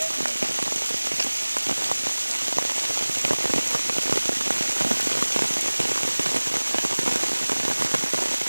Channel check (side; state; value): both; inverted; correlation -1.00